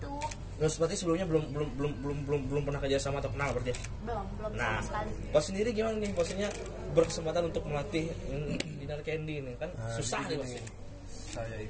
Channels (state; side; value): identical; both; correlation 1.00